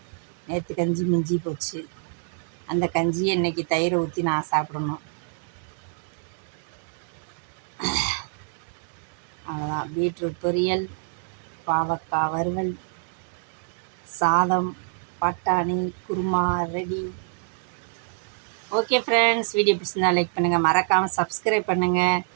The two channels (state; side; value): silent; left; 60 dB below the other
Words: நேற்று கஞ்சி மிஞ்சி போச்சு. அந்த கஞ்சியை இன்றைக்கி தயிரை ஊற்றி நான் சாப்பிடணும். அவ்வளோதான். பீட்ரூட் பொரியல், பாவக்காய் வறுவல், சாதம், பட்டாணி, kurma ready. Okay friends, video பிடிச்சிருந்தா லைக் பண்ணுங்கள், மறக்காமல் சப்ஸ்கிரைப் பண்ணுங்கள்.